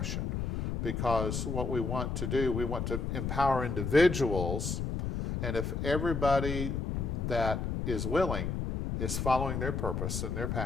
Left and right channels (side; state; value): left; noise; rumble, 2 dB below the sound